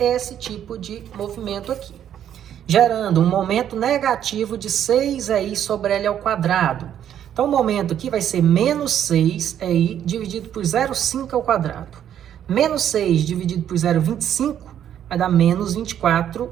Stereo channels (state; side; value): quieter; left; 10.1 dB